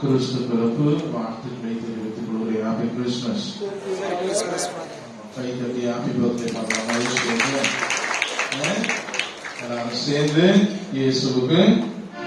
பிறப்பு வாழ்த்துக்களை தெரிவித்துக் கொள்கிறேன். Happy Christmas. கை தட்டி ஹாப்பி பர்த்டே பண்ணலாம். எல்லாரும் சேர்ந்து இயேசுவுக்கு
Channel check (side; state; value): both; identical; correlation 1.00